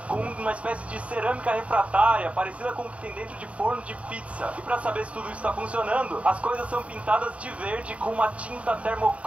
Com uma espécie de cerâmica refratária, parecida com o que tem dentro de forno de pizza. E para saber se tudo isso está funcionando, as coisas são pintadas de verde com uma tinta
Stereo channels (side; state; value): left; late; 0.064 ms